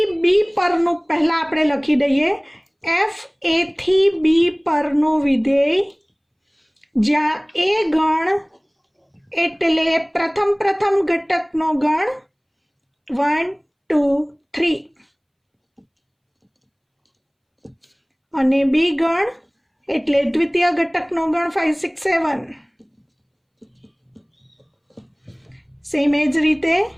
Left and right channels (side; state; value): both; identical; correlation 1.00